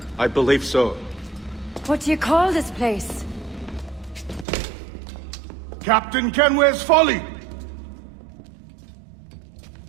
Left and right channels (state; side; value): drops out; left; at 4.5 s